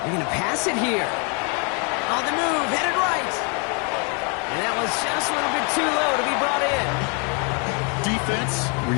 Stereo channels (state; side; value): quieter; right; 35.2 dB